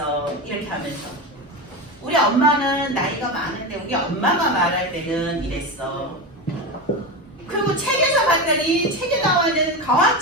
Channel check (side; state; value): both; normal; correlation 0.20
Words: 이렇게 하면서 우리 엄마는 나이가 많은데 우리 엄마가 말할 때는 이랬어. 그리고 책에서 봤더니 책에 나와있는 과학